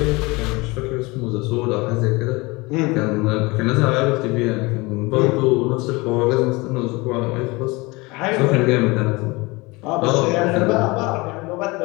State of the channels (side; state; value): right; quieter; 24.1 dB